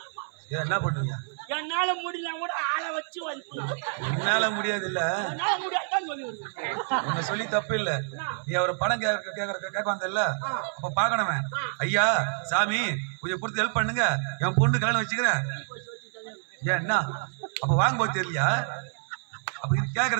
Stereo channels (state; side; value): silent; left; 59 dB below the other